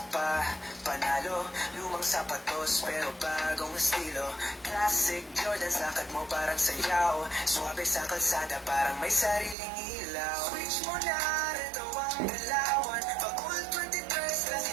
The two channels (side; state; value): left; drops out; at 9.6 s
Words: panalo. Lumang sapatos pero bagong estilo. Classic Jordans, lakad mo parang sayaw. Suwabe sa kalsada parang may sariling ilaw. Switch mo na, retro ang galawan. Pag Vault 23,